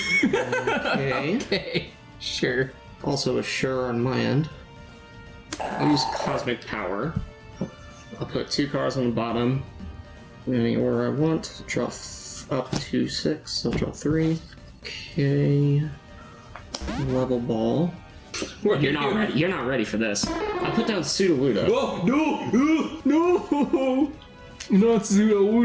Okay. Okay, sure. Also a sure on my end. I'll use Cosmic Power. I'll put 2 cards on the bottom. In any order I want. Draw up to 6. I'll draw 3. Okay. Level Ball. You're not ready. You're not ready for this. I'll put down Sudowoodo. Oh, no! Not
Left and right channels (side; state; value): both; identical; correlation 1.00